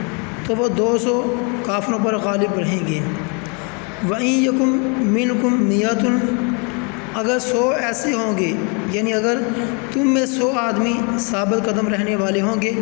تو وہ 200 کافروں پر غالب رہیں گے۔ وَإِن یکم منکم 100، اگر 100 ایسے ہوں گے، یعنی اگر تم میں 100 آدمی ثابت قدم رہنے والے ہوں گے،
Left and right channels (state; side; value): quieter; right; 34.5 dB